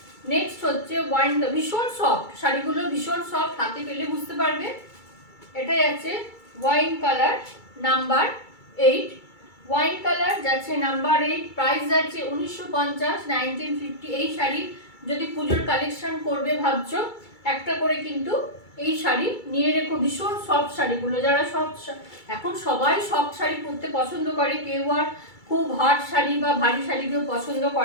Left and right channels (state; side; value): late; right; 2.3 ms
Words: নেক্সট হচ্ছে ওয়াইন, ভীষণ সফট শাড়িগুলো, ভীষণ সফট, হাতে পেলে বুঝতে পারবে। এটা যাচ্ছে wine colour number 8, wine colour যাচ্ছে নাম্বার 8, প্রাইস যাচ্ছে 1950, 1950। এই শাড়ি যদি পুজোর কালেকশন করবে ভাবছো, একটা করে কিন্তু এই শাড়ি নিয়ে রেখো। ভীষণ সফট শাড়িগুলো, যারা সফট, এখন সবাই সফট শাড়ি পরতে পছন্দ করে, কেউ আর খুব হার্ড শাড়ি বা ভারী শাড়ি কেউ পছন্দ